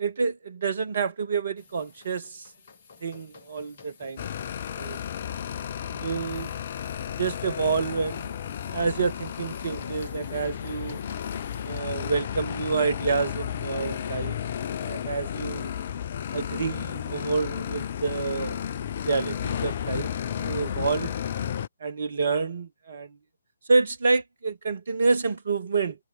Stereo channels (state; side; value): inverted; both; correlation -0.74